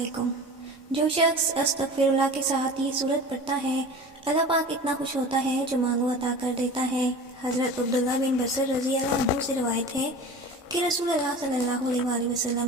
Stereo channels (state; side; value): normal; both; correlation 0.36